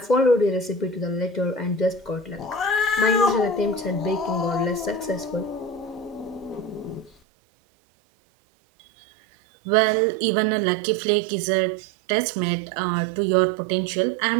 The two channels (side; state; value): left; drops out; at 7.2 s